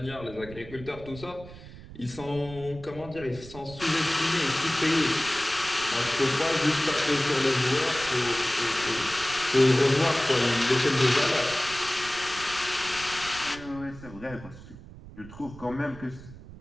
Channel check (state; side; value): noise; right; rumble, 16 dB below the sound